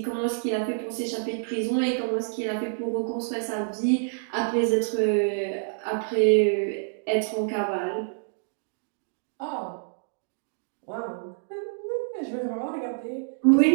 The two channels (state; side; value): silent; left; digital silence